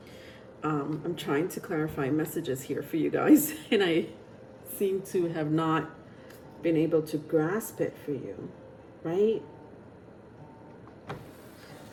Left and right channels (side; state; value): both; identical; correlation 1.00